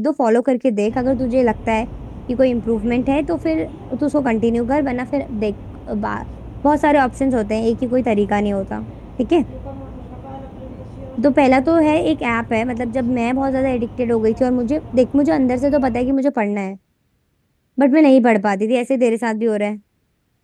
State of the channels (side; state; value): both; identical; correlation 1.00